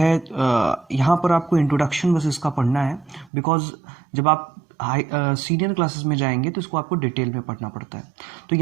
यहाँ पर आपको इंट्रोडक्शन बस इसका पढ़ना है, बिकॉज जब आप सीनियर क्लासेस में जाएंगे तो इसको आपको डिटेल में पढ़ना पड़ता है. तो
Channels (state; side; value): drops out; left; at 3.3 s